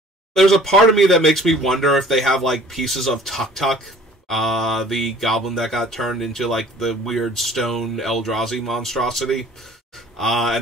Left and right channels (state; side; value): normal; both; correlation 0.50